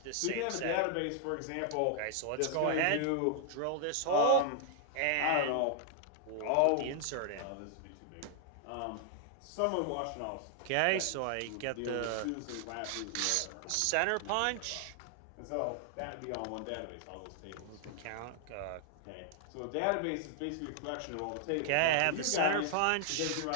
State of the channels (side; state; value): both; different; correlation 0.00